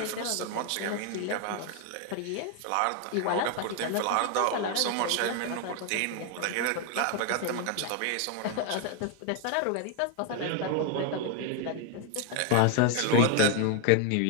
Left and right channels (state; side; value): different; both; correlation 0.01